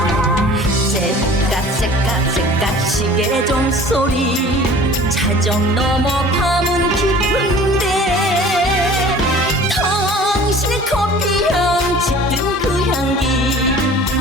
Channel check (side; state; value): both; normal; correlation 0.46